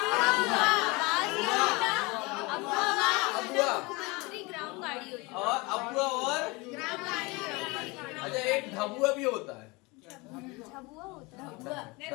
और अबुआ और अच्छा एक ढबुआ भी होता है।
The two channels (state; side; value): quieter; right; 25.4 dB